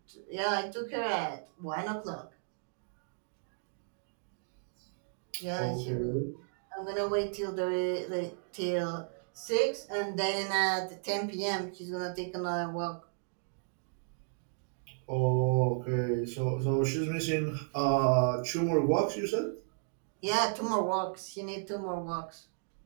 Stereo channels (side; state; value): left; silent; digital silence